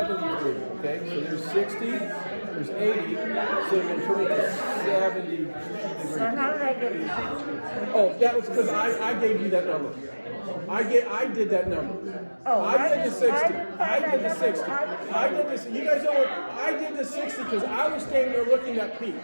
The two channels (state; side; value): inverted; both; correlation -1.00